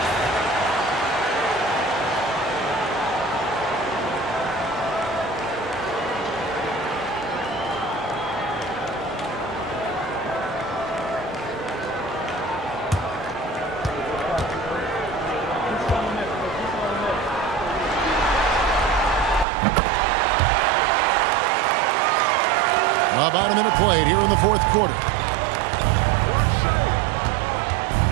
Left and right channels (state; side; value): drops out; left; at 19.5 s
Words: About a minute played here in the fourth quarter.